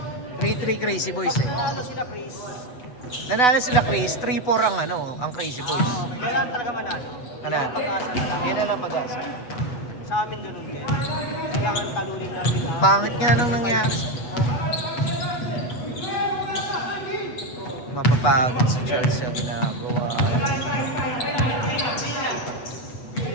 3-3 Crazy Boys eh. Ano sila, Chris? Nanalo sila Chris, 3-4 ang ano, ang Crazy Boys. Kailangan talaga manalo. Ano? Pag-asa na lang. Yan na lang pag-asa. Sa amin ganun din. Kailangan talunin namin. Pangit nga nang nangyari sa... Mapapagod si Charles sa ginagawa.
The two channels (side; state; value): right; late; 8.1 ms